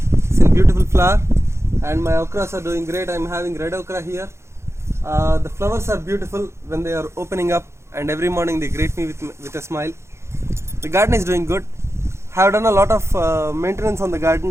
It's in beautiful flower and my okras are doing great. I'm having red okra here. The flowers are beautiful when they are opening up and every morning they greet me with a smile. The garden is doing good. I have done a lot of maintenance on the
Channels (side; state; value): left; late; 0.13 ms